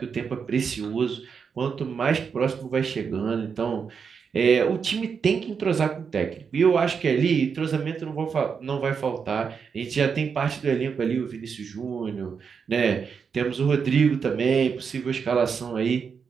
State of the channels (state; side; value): quieter; left; 6.2 dB